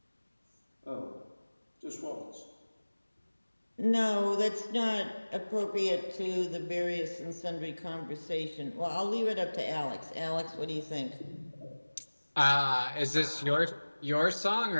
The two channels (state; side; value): inverted; both; correlation -1.00